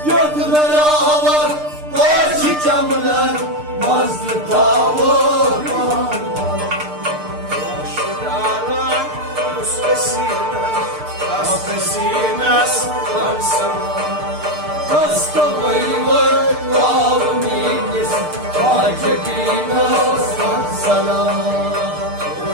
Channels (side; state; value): left; late; 6.6 ms